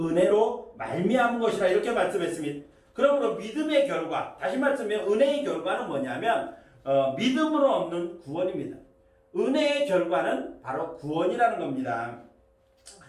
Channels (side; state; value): both; identical; correlation 1.00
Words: 말미암은 것이라 이렇게 말씀했습니다. 그러므로 믿음의 결과, 다시 말씀하면 은혜의 결과는 뭐냐면 믿음으로 얻는 구원입니다. 은혜의 결과는 바로 구원이라는 겁니다.